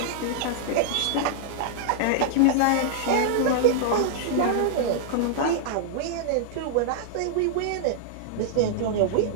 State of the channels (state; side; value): different; both; correlation -0.01